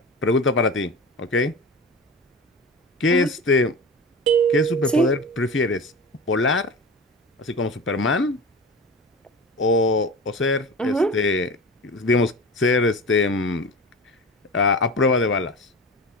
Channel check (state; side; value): normal; both; correlation 0.30